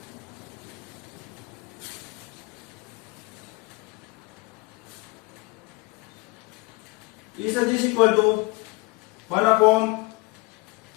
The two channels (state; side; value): quieter; right; 24.5 dB